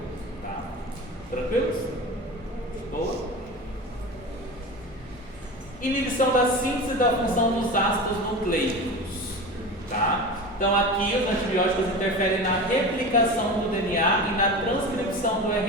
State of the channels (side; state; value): both; normal; correlation 0.30